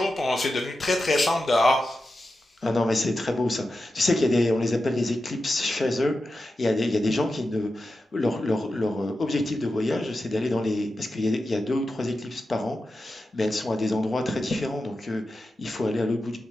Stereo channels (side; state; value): both; normal; correlation 0.91